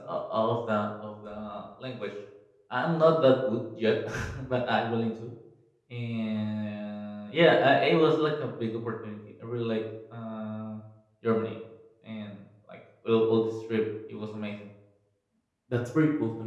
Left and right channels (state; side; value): identical; both; correlation 1.00